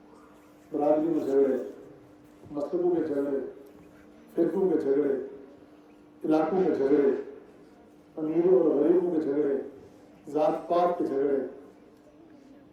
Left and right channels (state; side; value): identical; both; correlation 1.00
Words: برادری میں جھگڑے، مذہبوں کے جھگڑے، فرقوں کے جھگڑے، علاقوں کے جھگڑے، امیروں اور غریبوں کے جھگڑے، ذات پات کے جھگڑے.